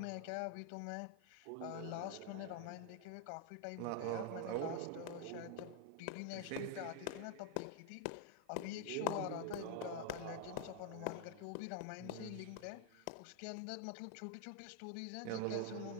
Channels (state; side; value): different; both; correlation 0.00